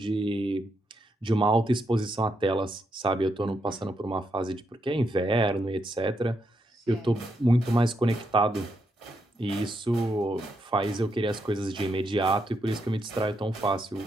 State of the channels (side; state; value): both; normal; correlation 0.80